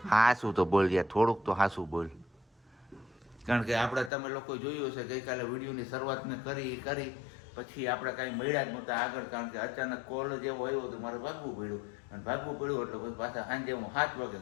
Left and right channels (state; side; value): drops out; right; at 4.1 s